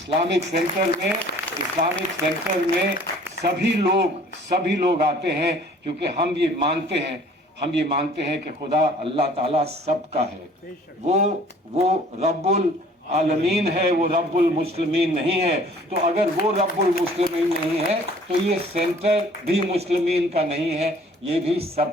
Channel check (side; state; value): both; normal; correlation 0.53